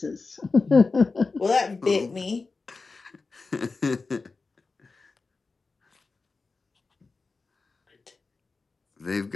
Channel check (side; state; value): right; quieter; 4.0 dB